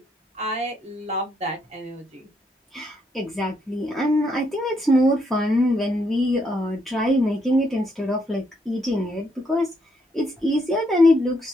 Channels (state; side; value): normal; both; correlation 0.75